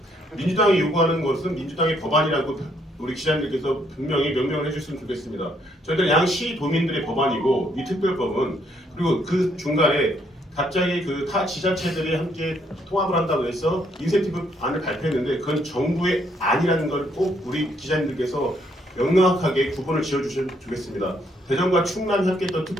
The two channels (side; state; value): both; normal; correlation 0.71